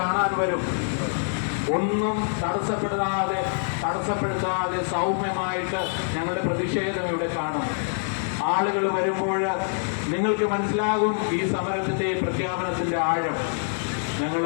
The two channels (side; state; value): right; silent; digital silence